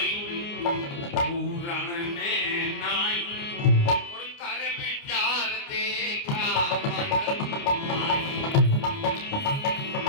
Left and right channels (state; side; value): late; right; 29 ms